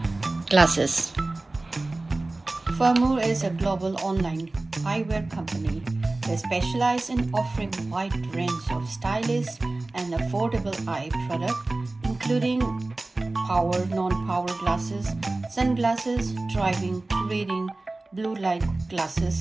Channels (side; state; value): left; quieter; 3.0 dB